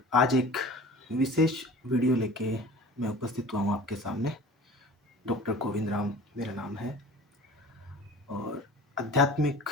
आज एक विशेष वीडियो लेके मैं उपस्थित हुआ हूँ आपके सामने। डॉक्टर गोविंद राम मेरा नाम है और आध्यात्मिक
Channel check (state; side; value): normal; both; correlation 0.41